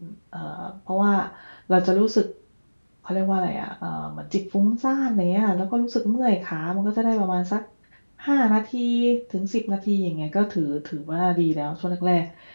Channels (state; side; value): inverted; both; correlation -1.00